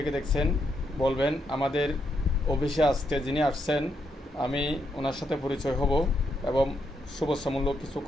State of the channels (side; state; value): both; normal; correlation 0.80